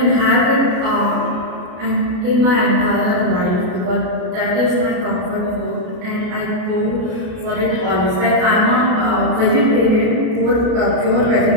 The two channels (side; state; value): left; late; 32 ms